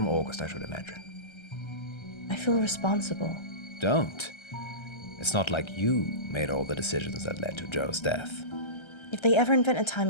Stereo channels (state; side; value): late; right; 1.3 ms